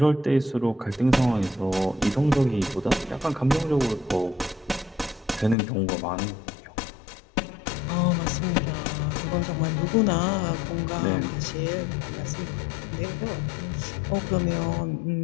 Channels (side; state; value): right; drops out; at 5.6 s